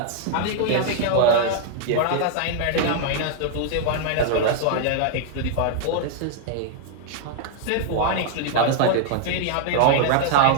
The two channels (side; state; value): both; different; correlation 0.00